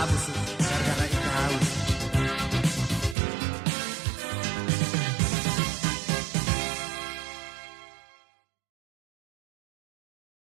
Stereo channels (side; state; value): left; drops out; at 3.2 s